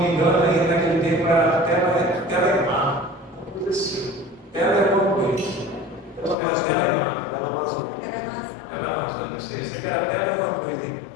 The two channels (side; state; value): right; drops out; at 6.4 s